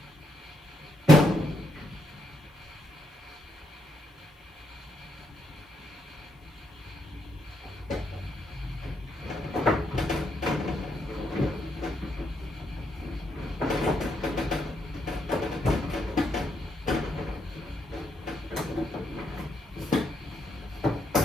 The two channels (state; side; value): normal; both; correlation 0.78